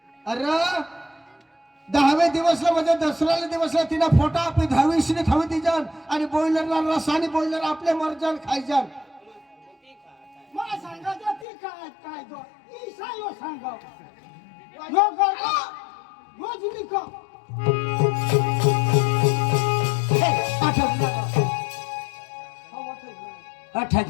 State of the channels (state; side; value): drops out; right; at 11.5 s